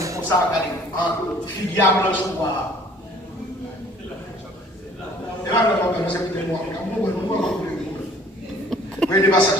comme ça, regardez. Filière blanche ou noire. Et là, on va faire c'est moi. Vous voyez les passages.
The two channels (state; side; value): normal; both; correlation 0.55